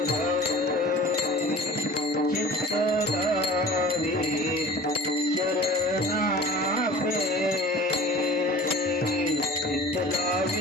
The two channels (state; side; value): normal; both; correlation 0.42